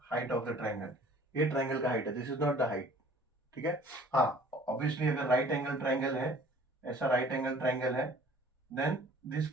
height of the triangle. ये ट्राइंगल का हाइट है, this is not the height. ठीक है, हाँ ऑब्वियसली अगर राइट एंगल ट्राइंगल है, ऐसा राइट एंगल ट्राइंगल है, then this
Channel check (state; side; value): normal; both; correlation 0.51